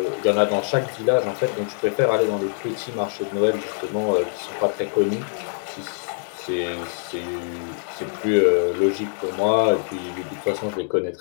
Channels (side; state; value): right; silent; digital silence